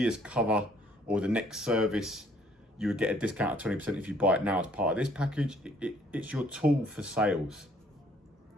cover or the next service, you would get a discount of 20% if you buy it now as part of this package. It's your tool for sales.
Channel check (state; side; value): normal; both; correlation 0.62